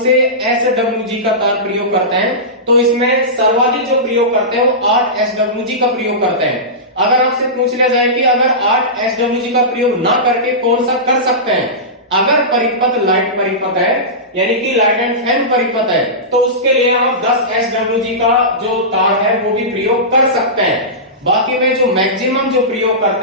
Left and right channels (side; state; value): both; normal; correlation -0.18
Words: SWG का तार प्रयोग करते हैं, तो इसमें सर्वाधिक जो प्रयोग करते हैं वो 8 SWG का प्रयोग करते हैं। अगर आपसे पूछ लिया जाए कि अगर 8 SWG का प्रयोग ना करके कौन सा कर सकते हैं, अगर परिपथ लाइट परिपथ है यानी कि लाइट एंड फैन परिपथ है, तो उसके लिए आप 10 SWG का जो तार है वो भी प्रयोग कर सकते हैं। बाकी में जो मैक्सिमम जो प्रयोग